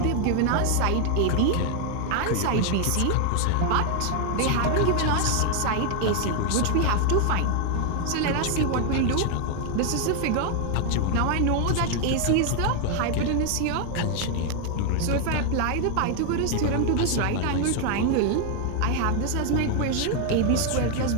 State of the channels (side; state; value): both; different; correlation 0.00